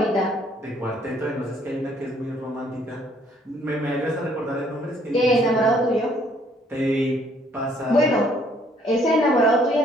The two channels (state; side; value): normal; both; correlation 0.64